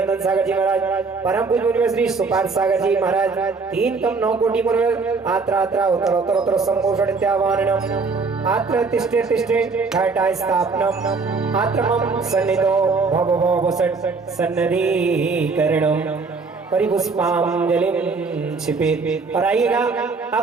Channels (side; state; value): left; quieter; 4.4 dB